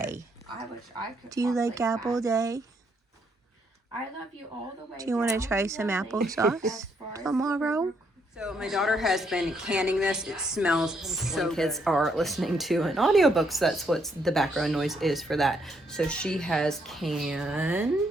Do you like apple day? I love you all the way. Do you want to try some applesauce tomorrow? So my daughter has been canning this. It smells so good. Kids are listening to an audiobook, so that's what the background noise is for that. So she has canned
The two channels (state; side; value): normal; both; correlation 0.73